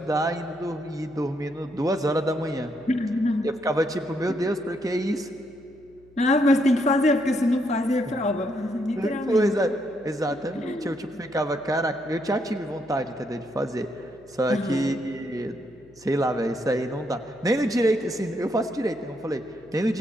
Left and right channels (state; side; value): noise; left; hum, 27 dB below the sound